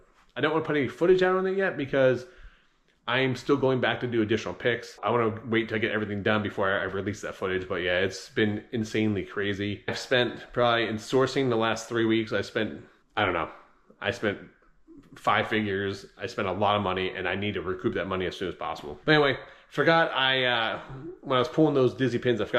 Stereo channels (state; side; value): identical; both; correlation 1.00